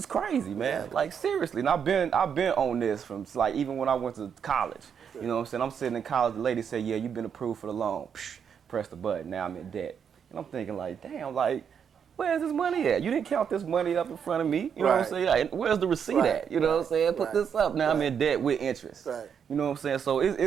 crazy, man. Exactly. Like, seriously. And I've been on this from, like, even when I went to college. You know what I'm saying? I'm sitting in college. The lady said, "Yeah, you've been approved for the loan." Psh, press the button. Now I'm in debt. And I'm thinking, like, damn, like, where's this money at? You didn't count this money up in front of me. You know what I'm saying? Like, where's the receipt at? You know what I'm saying? Put this up. Now I'm in debt with interest. Right. You know what I'm saying? So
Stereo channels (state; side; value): quieter; left; 7.5 dB